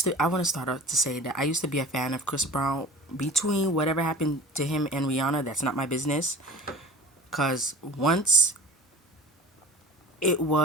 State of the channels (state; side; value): normal; both; correlation 0.39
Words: want to start out to say that I used to be a fan of Chris Brown. Between whatever happened to him and Rihanna, that's not my business. Because once it